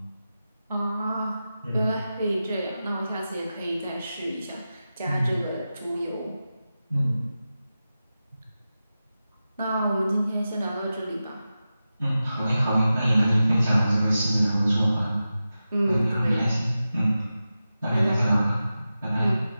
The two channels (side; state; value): both; inverted; correlation -0.93